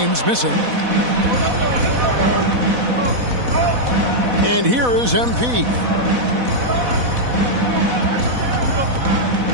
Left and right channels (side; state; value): left; late; 4.1 ms